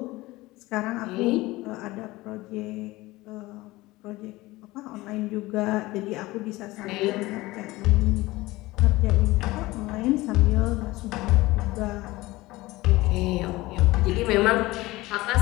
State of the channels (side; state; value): right; quieter; 19.6 dB